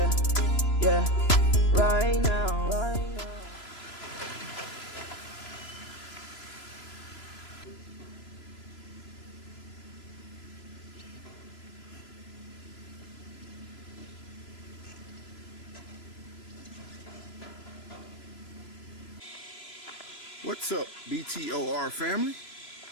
yeah, right now. What's up, BTOR family?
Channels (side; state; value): right; late; 3.0 ms